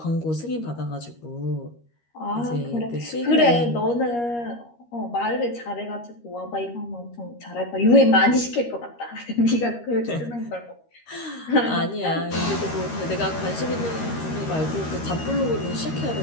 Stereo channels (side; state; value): right; late; 13 ms